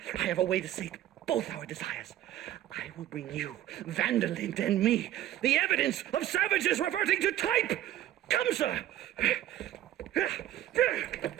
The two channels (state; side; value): quieter; left; 12.8 dB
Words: I have a way to sate both our desires. I will bring you, Vanderlint and me, the evidence of savages reverting to type. Come, sir.